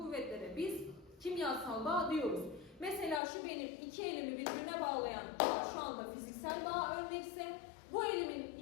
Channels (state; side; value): drops out; right; at 3.2 s